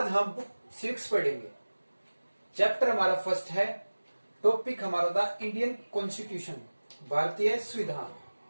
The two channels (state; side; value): inverted; both; correlation -1.00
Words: हम बुक 6 पढ़ेंगे। चैप्टर हमारा फर्स्ट है। टॉपिक हमारा द इंडियन कॉन्स्टिट्यूशन, भारतीय संविधान।